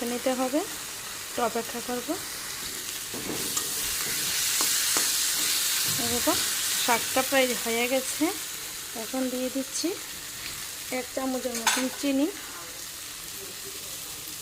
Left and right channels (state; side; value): identical; both; correlation 1.00